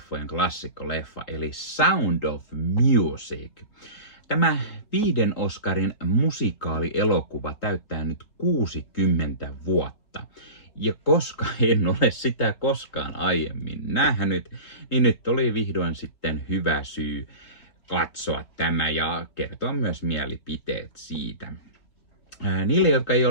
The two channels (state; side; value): late; right; 3.8 ms